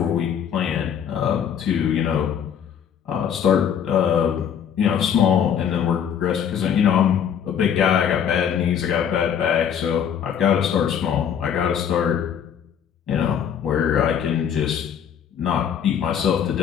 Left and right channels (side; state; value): right; quieter; 8.5 dB